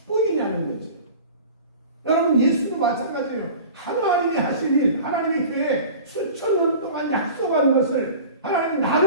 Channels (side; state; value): both; inverted; correlation -0.38